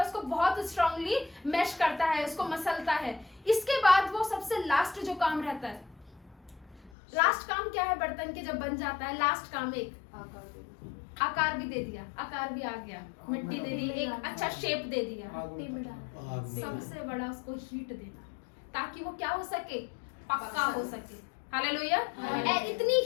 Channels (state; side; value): drops out; right; at 6.9 s